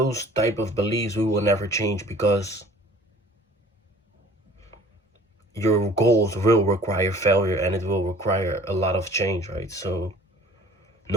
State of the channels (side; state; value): both; normal; correlation 0.50